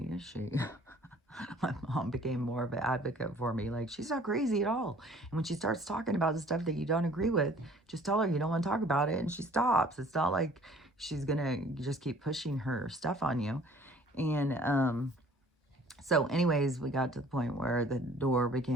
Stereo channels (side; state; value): both; normal; correlation 0.53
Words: is she? My mom became more of an advocate for me. Like, she's not crazy at all. And when she starts talking about the stuff that you don't agree with, just tell her you don't want to talk about it and she stops. It's not like she's going to just keep pushing her stuff on you. And so anyways, we got to the point where the door